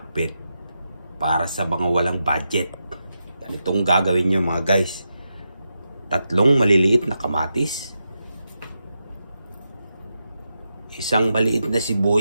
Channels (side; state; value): both; inverted; correlation -0.87